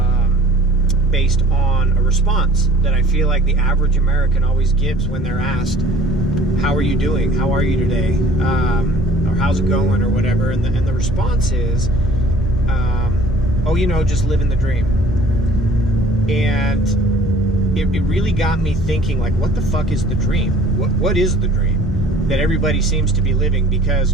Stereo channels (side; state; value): both; normal; correlation 0.51